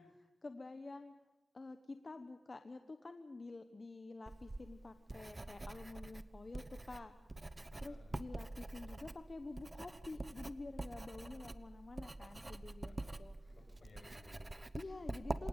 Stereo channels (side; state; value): both; normal; correlation 0.96